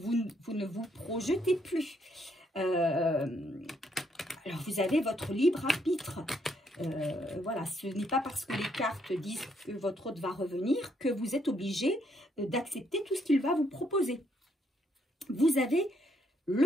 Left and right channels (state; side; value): normal; both; correlation 0.73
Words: ne vous projetez plus. Alors, vous avez votre libre arbitre. Voilà, ce n'est pas parce que les cartes disent que votre autre va revenir que vous êtes obligé d'accepter tout ce qu'il va vous proposer. Vous avez